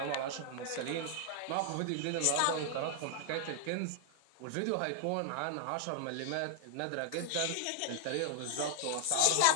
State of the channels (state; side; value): different; both; correlation -0.01